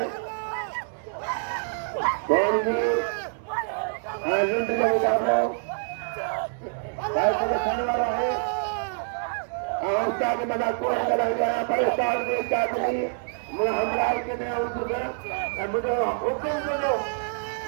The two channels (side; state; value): left; silent; digital silence